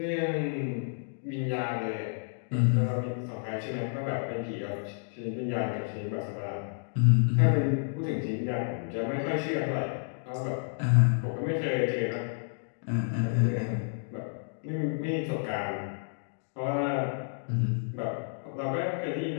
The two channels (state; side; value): silent; right; digital silence